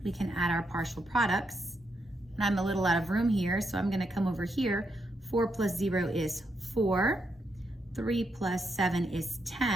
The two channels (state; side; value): normal; both; correlation 0.81